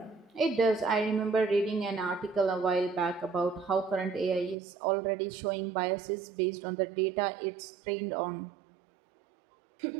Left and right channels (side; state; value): left; drops out; at 4.5 s